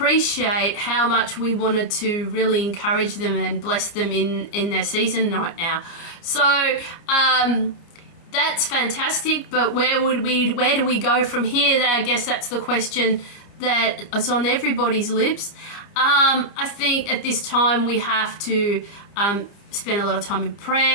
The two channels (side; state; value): right; late; 29 ms